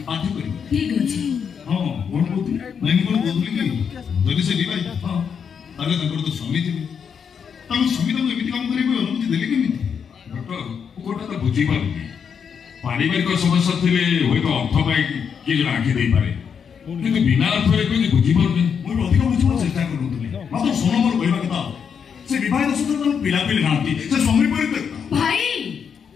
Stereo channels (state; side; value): quieter; right; 7.0 dB